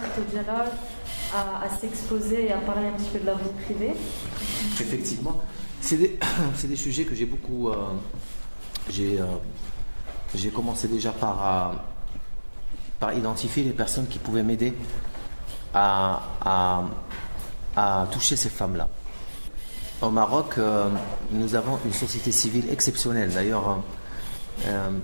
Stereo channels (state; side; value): inverted; both; correlation -1.00